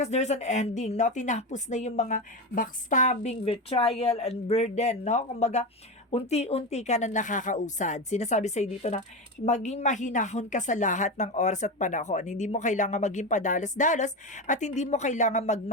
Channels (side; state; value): both; normal; correlation 0.18